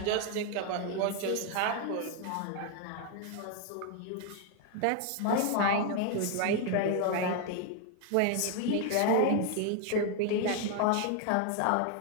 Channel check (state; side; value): different; both; correlation 0.01